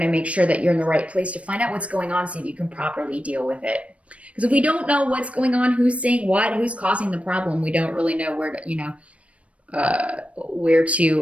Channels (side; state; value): left; late; 0.063 ms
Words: to make sure that you're in the right place to find out what's going on, so you can properly deal with it. Because if we don't know what's going on, who's saying what, who's causing the problem, we don't really know where